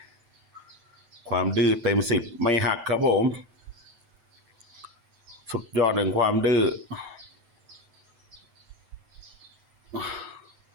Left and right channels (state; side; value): late; left; 7.9 ms